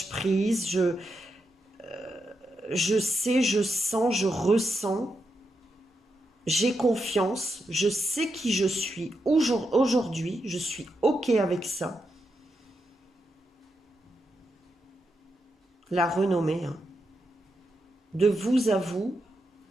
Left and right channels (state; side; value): normal; both; correlation 0.84